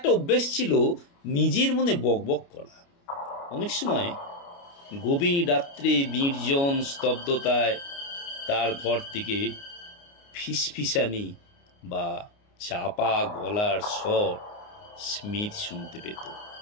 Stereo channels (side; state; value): right; late; 29 ms